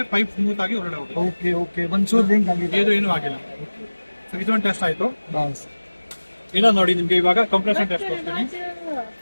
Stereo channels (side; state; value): both; inverted; correlation -1.00